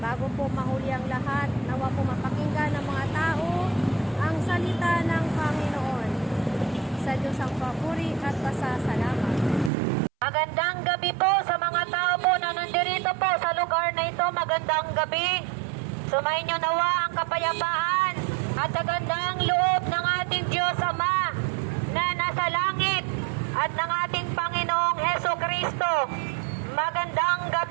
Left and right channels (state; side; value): drops out; left; at 9.7 s